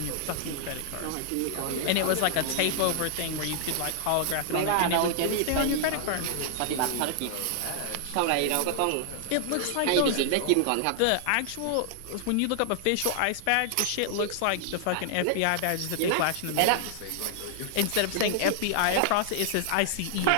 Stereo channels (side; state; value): both; different; correlation 0.00